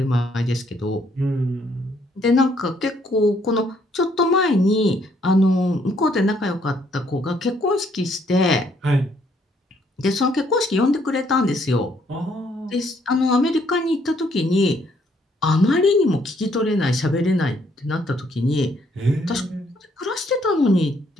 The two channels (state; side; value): normal; both; correlation 0.68